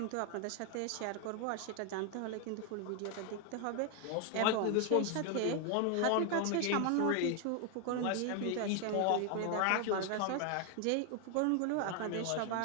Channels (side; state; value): both; different; correlation 0.00